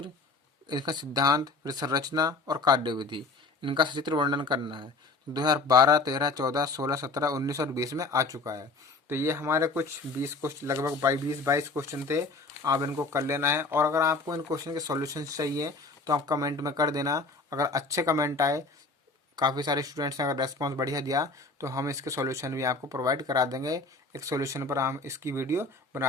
इसका सिद्धांत, फिर संरचना और कार्यविधि, इनका सचित्र वर्णन करना है। 2012, 13, 14, 16, 17, 19 और 20 में आ चुका है। तो ये हमारे कुछ 20 क्वेश्चन, लगभग 20-22 क्वेश्चन थे, आप इनको कर लेना है। और अगर आपको इन क्वेश्चन के सॉल्यूशन चाहिए तो आप कमेंट में कर देना। अगर अच्छे कमेंट आए, काफ़ी सारे स्टूडेंट्स ने अगर रेस्पॉन्स बढ़िया दिया तो हम इसके सॉल्यूशन भी आपको प्रोवाइड करा देंगे। एक सॉल्यूशन पर हम इसकी वीडियो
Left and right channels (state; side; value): quieter; right; 3.7 dB